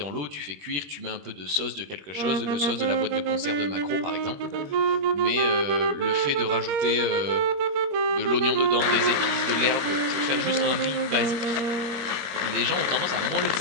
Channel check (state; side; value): late; left; 21 ms